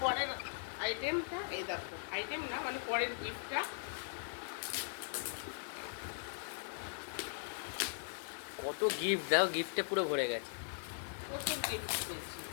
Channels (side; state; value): right; silent; digital silence